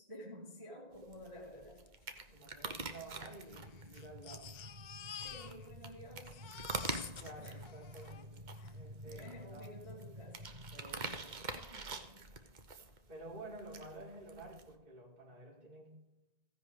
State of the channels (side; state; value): left; late; 2.1 ms